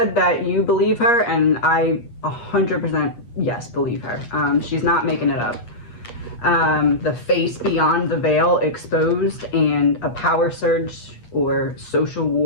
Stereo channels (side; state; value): right; late; 8.4 ms